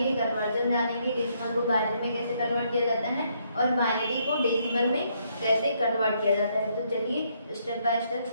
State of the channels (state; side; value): inverted; both; correlation -0.73